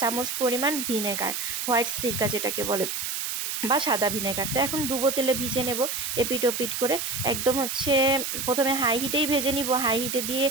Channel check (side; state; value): right; noise; hiss, 3 dB below the sound